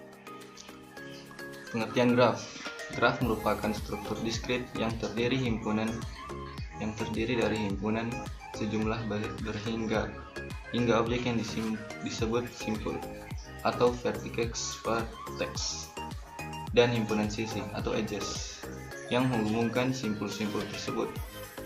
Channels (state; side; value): identical; both; correlation 1.00